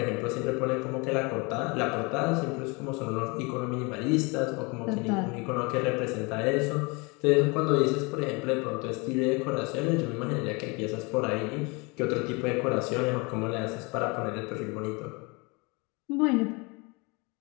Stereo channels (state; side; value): quieter; right; 28.5 dB